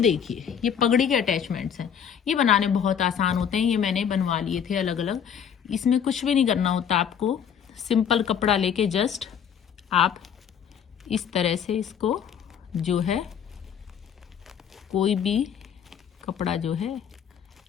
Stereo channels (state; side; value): quieter; right; 8.1 dB